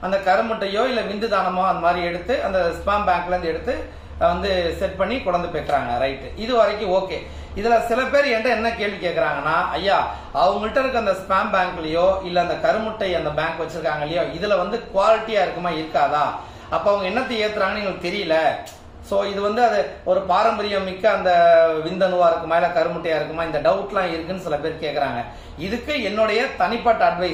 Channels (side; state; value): both; identical; correlation 1.00